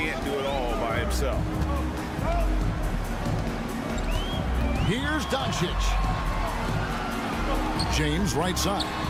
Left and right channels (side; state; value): both; identical; correlation 1.00